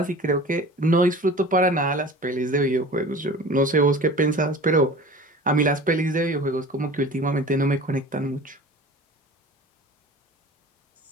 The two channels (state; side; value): normal; both; correlation 0.39